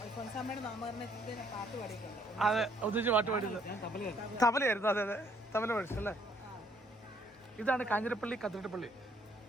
അതെ, ഒന്നിച്ച് പാട്ട് പാടിയത് തബലയായിരുന്നു. അതെ അതെ, തബല പഠിച്ചല്ലേ. ഇതാണ് കാഞ്ഞിരപ്പള്ളി കത്തീഡ്രൽ പള്ളി.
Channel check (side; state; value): both; normal; correlation 0.65